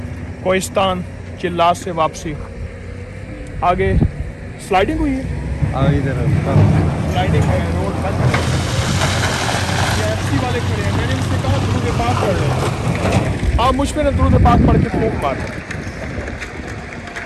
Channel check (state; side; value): identical; both; correlation 1.00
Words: कोहिस्तान चिल्लात से वापसी, आगे स्लाइडिंग हुई है, इधर स्लाइडिंग है, रोड बंद है। ये एफसी वाले खड़े हैं, मैंने उनसे कहा दुरूद पाक पढ़ लो, आप मुझ पे ना दुरूद पाक पढ़ के फूंक मार।